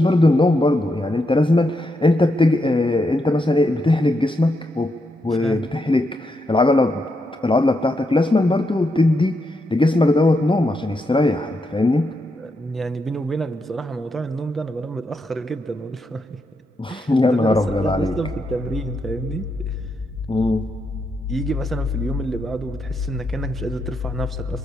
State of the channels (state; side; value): normal; both; correlation 0.82